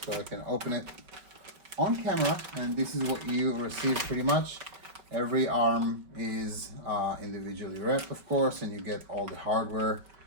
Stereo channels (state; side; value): late; left; 5.3 ms